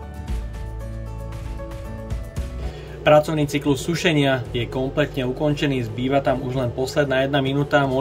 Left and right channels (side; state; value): both; identical; correlation 1.00